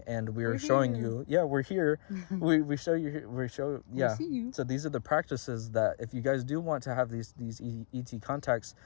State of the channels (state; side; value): silent; right; digital silence